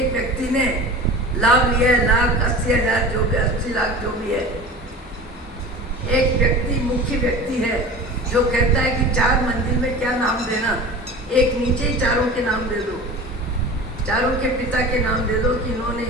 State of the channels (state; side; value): normal; both; correlation 0.35